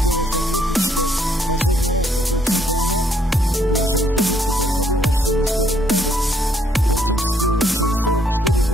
отметить, что последний раз такой чемпионат в нашей республике проходил аж в 1971 году. Практически через 44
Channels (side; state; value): both; normal; correlation 0.69